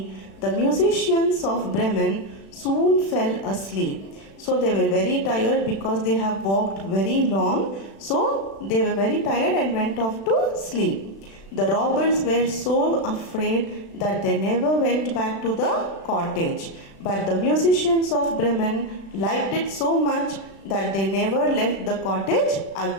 the musicians of Bremen soon fell asleep. So they were very tired because they have walked very long. So they were very tired and went off to sleep. The robbers were so afraid that they never went back to the cottage. But the musicians of Bremen liked it so much that they never left the cottage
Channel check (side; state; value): right; late; 36 ms